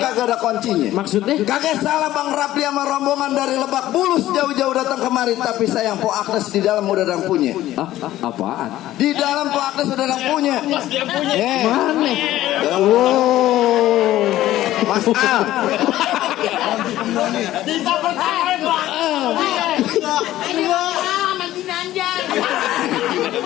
ada kuncinya. Maksudnya? Kagak salah Bang Rapli sama rombongan dari Lebak Bulus jauh-jauh datang kemari, tapi sayang Po Agnes di dalam udah ada yang punya. Apaan? Di dalam Po Agnes udah ada yang punya. Mana? Wow. Mas Al.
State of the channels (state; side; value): quieter; right; 14.5 dB